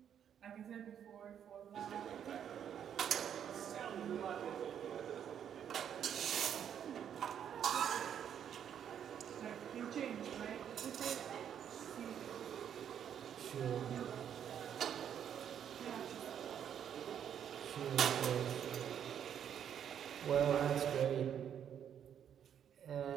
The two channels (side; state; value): left; quieter; 9.0 dB